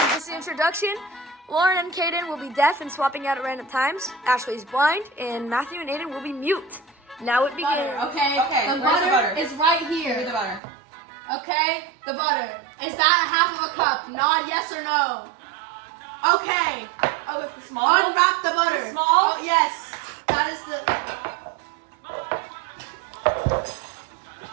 Just the introduction. Lauryn and Caiden will be deaf and swapping out at random times. Ashley is blind, and Matthew and Aidan will be mute. Now it begins. Okay, Okay, the butter is right Give me here. the butter. Okay, the butter. Is that half of a cup? Nod yes or no. Okay. Oh, it's small? Unwrap the butter. It's small? Oh, yes. That is the...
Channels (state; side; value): drops out; left; at 10.6 s